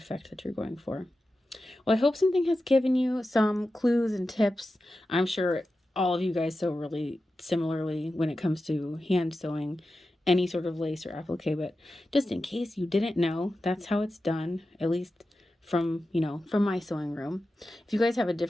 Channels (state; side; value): normal; both; correlation 0.92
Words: that you're going for. Well, I hope something has given you some clues and tips. I'm sure all of you guys sew really similarly when it comes to hand sewing any sort of lace or applique, but just in case you didn't know, that's how it's done, at least from, you know, from my sewing room. If you guys have a